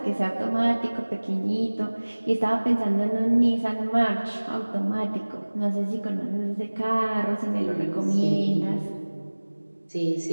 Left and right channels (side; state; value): both; inverted; correlation -1.00